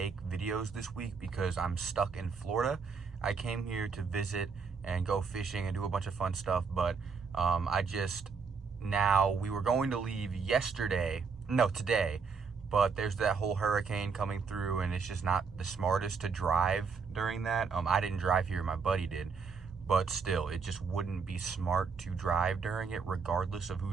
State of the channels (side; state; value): left; quieter; 5.3 dB